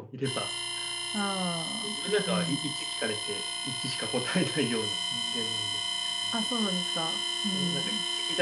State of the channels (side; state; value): both; identical; correlation 1.00